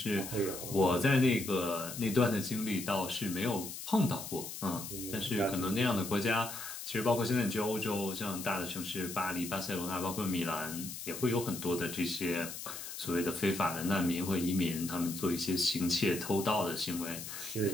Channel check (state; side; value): noise; left; hiss, 9 dB below the sound